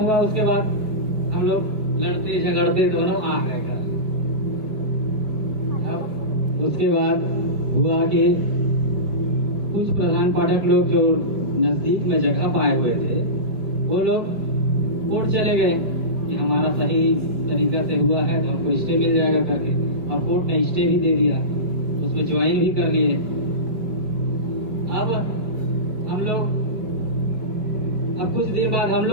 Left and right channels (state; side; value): late; left; 5.1 ms